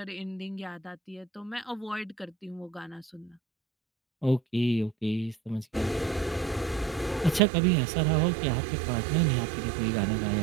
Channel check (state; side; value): drops out; left; at 7.4 s